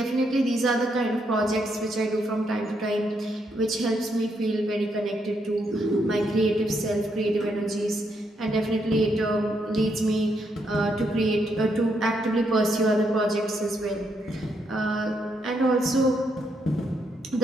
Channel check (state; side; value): normal; both; correlation 0.77